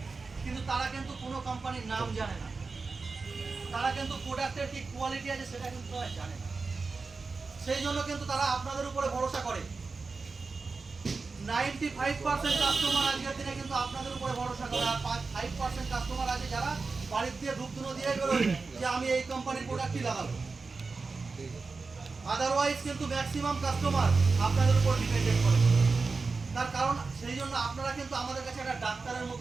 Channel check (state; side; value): quieter; left; 4.2 dB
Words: কিন্তু তারা কিন্তু কোনো কোম্পানির নাম জানে না। তারা কিন্তু প্রোডাক্টের কি কোয়ালিটি আছে সেটা কিন্তু তারা জানে না। সেই জন্য কিন্তু তারা আপনাদের উপরে ভরসা করে। 95% কাস্টমার আজকের দিনে কিন্তু আপনাদের উপরে ভরসা করে, আর 5% কাস্টমার আছে যারা বাড়ির দিয়ে ধূপধুনো দিয়ে বেরোয় যে আমি এই কোম্পানির প্রোডাক্টই লাগাবো। আদারওয়াইজ কিন্তু ম্যাক্সিমাম কাস্টমার আপনাদের উপর ডিপেন্ডেন্ট করে। তার কারণ সেই জন্য আপনারা কিন্তু আমাদের কাছে একটা ডাক্তারের